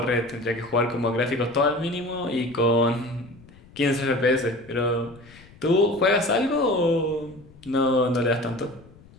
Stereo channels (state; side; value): noise; left; rumble, 24 dB below the sound